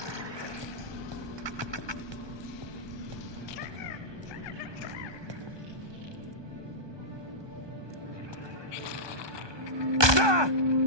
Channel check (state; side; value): late; left; 1.2 ms